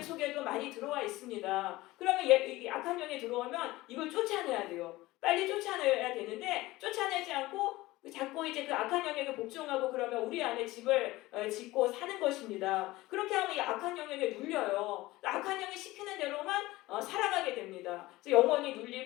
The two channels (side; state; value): right; quieter; 18.8 dB